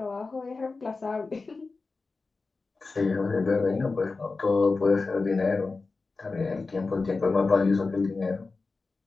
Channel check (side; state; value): right; quieter; 4.0 dB